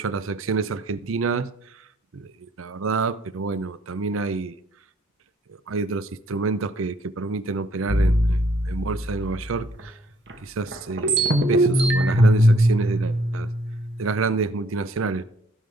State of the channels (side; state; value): both; normal; correlation 0.63